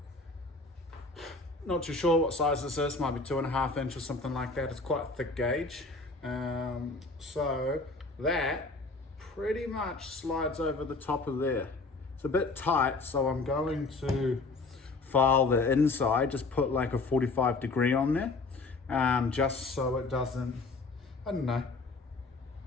not too sure what size this is, might be 2.5 inch or something like that. It's quite a thick gauge. So that pretty much slides over the top of there. It's a bit tight, so I'm going to file the inside, just put like a 45 degree on there, just so it doesn't, I don't know,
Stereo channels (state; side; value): quieter; right; 3.6 dB